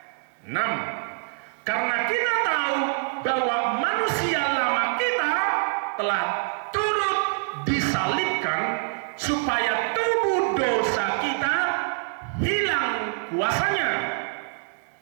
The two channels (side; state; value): left; silent; digital silence